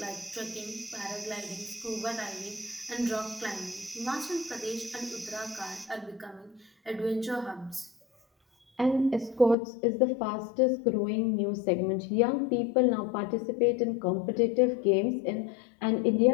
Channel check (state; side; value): drops out; right; at 9.6 s